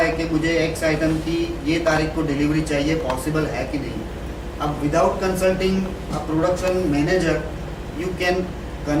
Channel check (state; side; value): identical; both; correlation 1.00